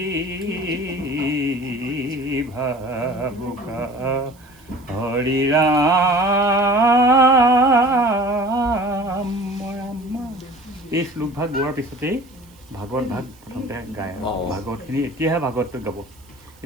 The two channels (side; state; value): right; noise; hiss, 29 dB below the sound